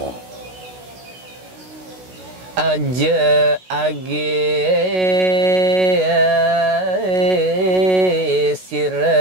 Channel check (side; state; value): left; late; 16 ms